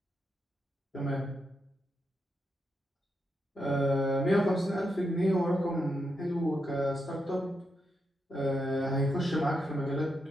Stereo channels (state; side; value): normal; both; correlation 0.84